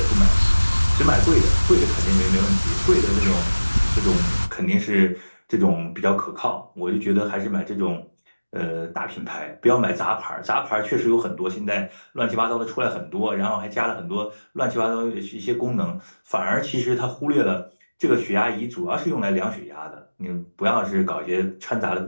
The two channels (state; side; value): inverted; both; correlation -1.00